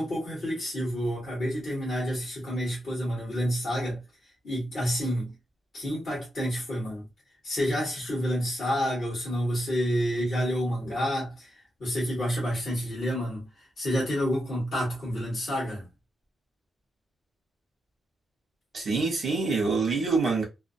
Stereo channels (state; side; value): normal; both; correlation 0.83